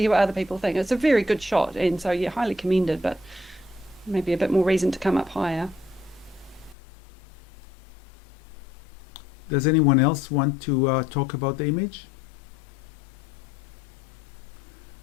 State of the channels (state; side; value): drops out; right; at 6.8 s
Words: what other people think. It's a very good shot, and so yeah, highly commended, but maybe a bit more reason to come up higher. Does anyone else want to talk about the image?